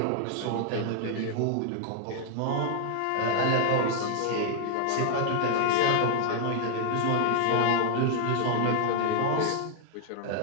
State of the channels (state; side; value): different; both; correlation -0.01